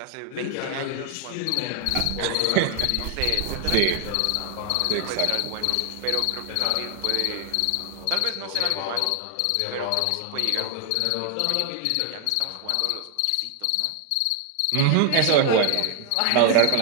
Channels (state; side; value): different; both; correlation 0.00